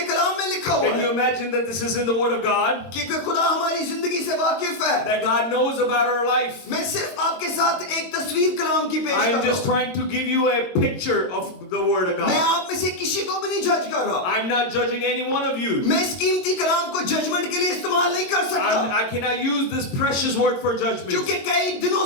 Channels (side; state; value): right; late; 22 ms